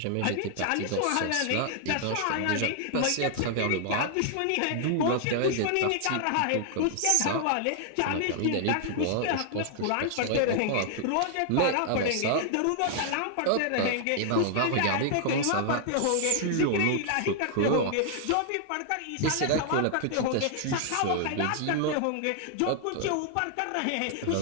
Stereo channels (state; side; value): different; both; correlation 0.00